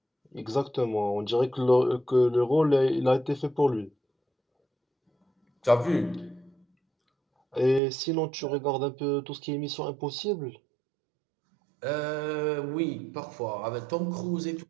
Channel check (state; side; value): drops out; left; at 7.8 s